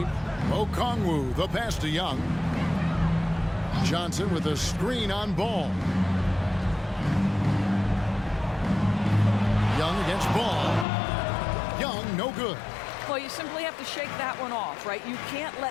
Okongwu, the pass to Young. Johnson with a screen on Ball. Young against Ball. Young, no good. Well, you simply have to shake that one off, right? You can't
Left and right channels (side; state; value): right; drops out; at 10.9 s